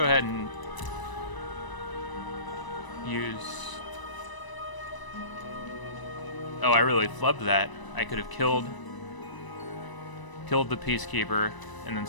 ahead and use... Oh, I really flubbed that. I could have killed the Peacekeeper and then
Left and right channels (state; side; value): late; right; 1.0 ms